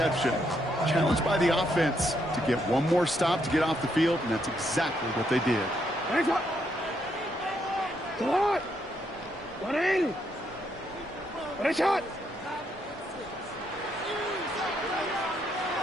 Challenged by the offense to get one more stop to get off the field, and that's exactly what they did.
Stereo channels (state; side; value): normal; both; correlation 0.76